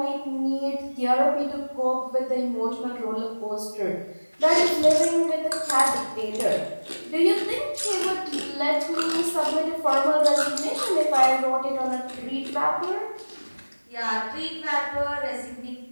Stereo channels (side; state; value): both; inverted; correlation -1.00